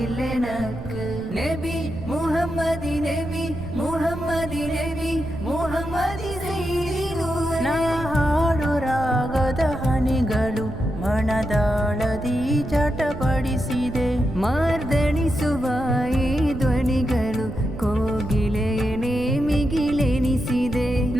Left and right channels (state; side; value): noise; right; rumble, 11 dB below the sound